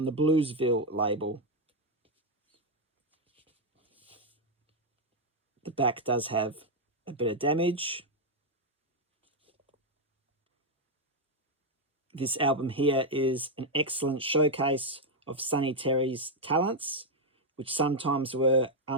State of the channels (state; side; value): normal; both; correlation 0.01